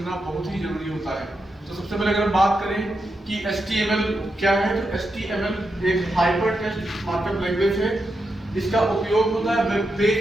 बहुत ही जरूरी होता है। तो सबसे पहले अगर बात करें कि HTML क्या है, तो HTML एक हाइपर टेक्स्ट मार्कअप लैंग्वेज है। इसका उपयोग होता है वेब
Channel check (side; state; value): both; normal; correlation 0.85